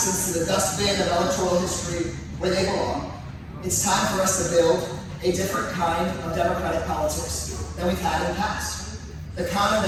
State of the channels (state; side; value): identical; both; correlation 1.00